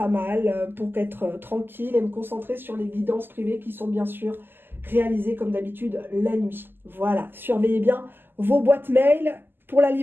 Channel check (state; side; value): late; left; 0.096 ms